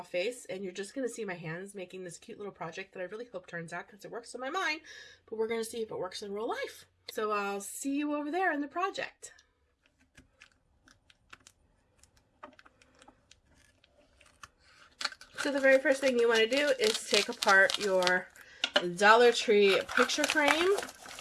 face and you're just going to see my hands making this cute little project that I really hope turns out because it works in my mind. But we're going to see if it works in real life. So I'll see you over there in the project. So the very first thing you want to do is take apart your Dollar Tree picture frame.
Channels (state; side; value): identical; both; correlation 1.00